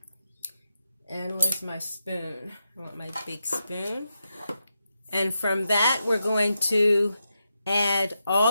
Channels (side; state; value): both; inverted; correlation -0.86